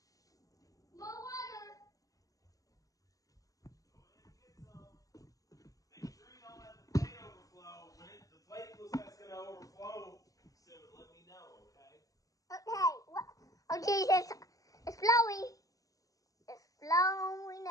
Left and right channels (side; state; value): right; late; 0.17 ms